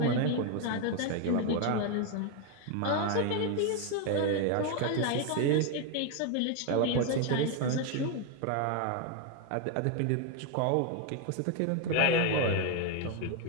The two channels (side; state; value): both; different; correlation 0.01